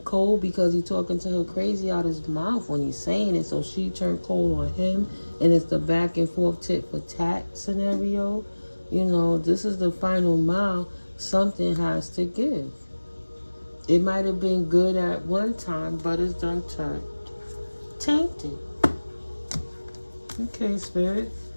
cold because he's talking to her crazy out his mouth when he's saying it, so she turned cold on him, and it's the back and forth tit for tat scenario. You know, this is the final mile. Something has to give. It might have been good at one time, but it's done turned tainted. Okay, Spirit.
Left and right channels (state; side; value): inverted; both; correlation -1.00